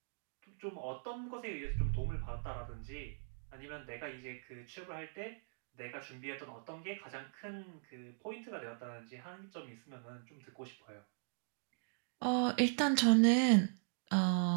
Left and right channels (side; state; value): left; silent; digital silence